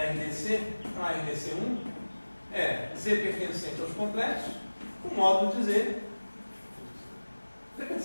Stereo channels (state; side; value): inverted; both; correlation -1.00